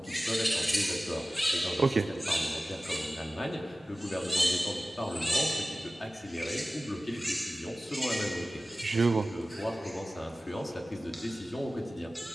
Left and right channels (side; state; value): both; normal; correlation 0.97